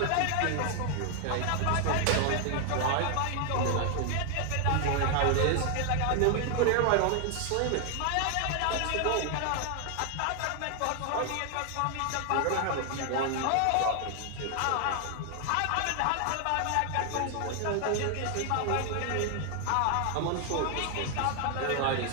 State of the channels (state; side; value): different; both; correlation 0.00